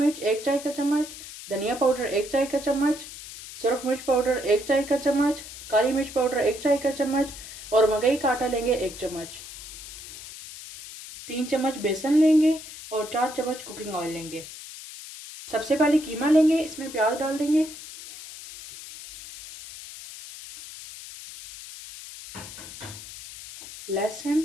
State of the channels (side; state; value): left; noise; hiss, 13 dB below the sound